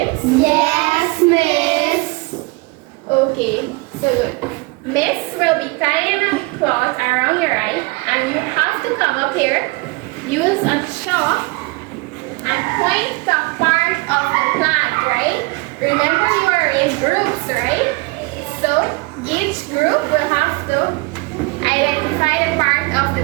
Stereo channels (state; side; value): quieter; left; 25.7 dB